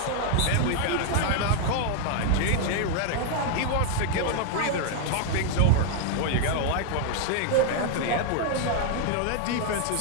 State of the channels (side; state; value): both; different; correlation 0.00